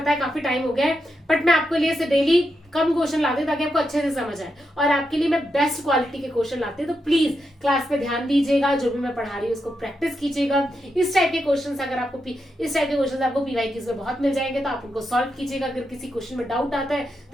है काफी टाइम हो गया है, बट मैं आपके लिए डेली कम क्वेश्चन लाती हूँ ताकि आपको अच्छे से समझ आए, और आपके लिए मैं बेस्ट क्वालिटी के क्वेश्चन लाती हूँ। तो प्लीज क्लास पे ध्यान दीजिएगा, जो भी मैं पढ़ा रही हूँ उसको प्रैक्टिस कीजिएगा। इस टाइप के क्वेश्चन अगर आपको पीवाईक्यूज में बहुत मिल जाएंगे, तो आप उनको सॉल्व कीजिएगा। अगर किसी क्वेश्चन में डाउट आता है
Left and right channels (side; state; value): both; normal; correlation 0.85